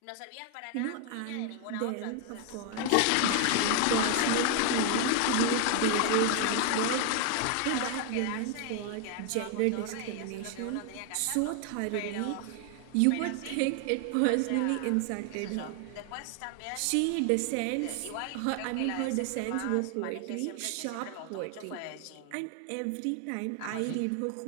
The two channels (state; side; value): different; both; correlation 0.00